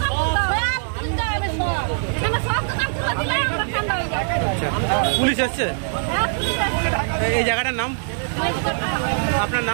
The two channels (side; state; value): left; silent; digital silence